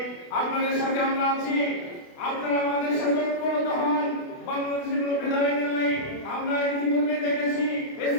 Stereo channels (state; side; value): late; right; 28 ms